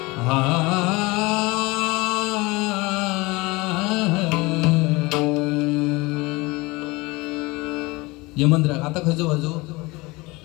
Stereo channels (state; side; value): quieter; right; 23.5 dB